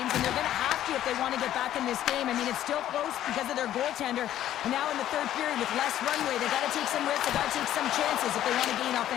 and they're going to have to if they want to get back in this game. I mean, it's still close because of their goaltender. And now in the third period with less runway, they got to take some risks, they got to take some chances if they want to gain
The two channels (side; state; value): right; quieter; 12.1 dB